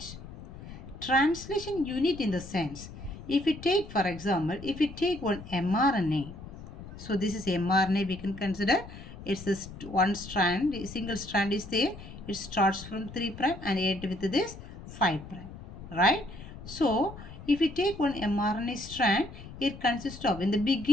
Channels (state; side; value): noise; left; rumble, 14 dB below the sound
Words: Translation unit in the sense, if we take, for example, if we take one mRNA, so this is mRNA, we can consider it's this one strand, single strand is there, it starts from 3 prime and end with this 5 prime, right? So if we take one mRNA strand, it consists of, in the